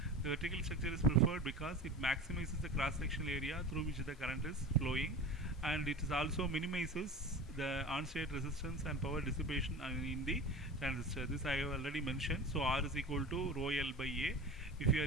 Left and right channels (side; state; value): both; normal; correlation 0.34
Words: The vertical structure is preferred because it maximizes the cross-sectional area through which the current is flowing, and it is also minimizes the on-state resistance and power dissipation in the transistor. This I have already mentioned. So R is equal to rho L by A. If you